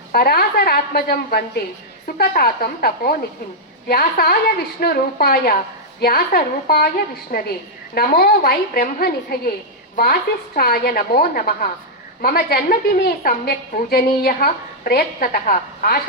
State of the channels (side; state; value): both; normal; correlation -0.06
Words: పరాశరాత్మజం వందే సుఖతాతం తపోనిధిం వ్యాసాయ విష్ణు రూపాయ వ్యాస రూపాయ విష్ణవే నమో వై బ్రహ్మనిధయే వాసిష్ఠాయ నమో నమః. మమ జన్మదినే సమ్యక్ పూజనీయః ప్రయత్నతః